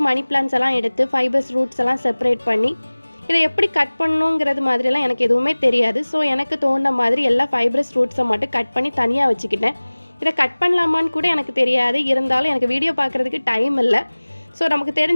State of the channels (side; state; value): both; inverted; correlation -1.00